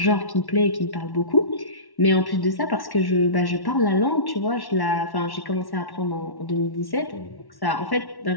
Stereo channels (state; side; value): late; right; 1.1 ms